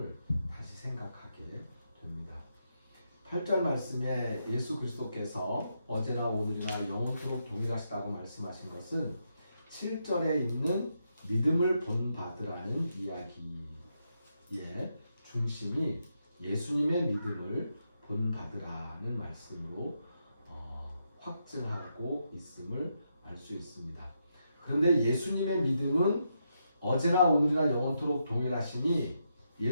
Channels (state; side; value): inverted; both; correlation -0.82